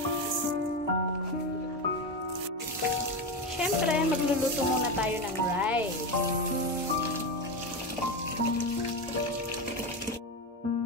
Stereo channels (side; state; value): both; normal; correlation 0.16